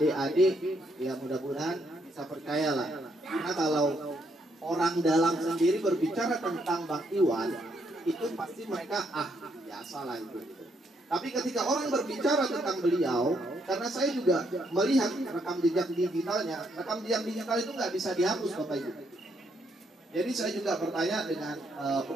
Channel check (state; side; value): normal; both; correlation 0.74